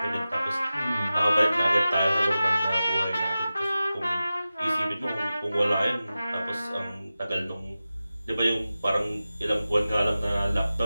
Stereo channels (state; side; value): inverted; both; correlation -0.94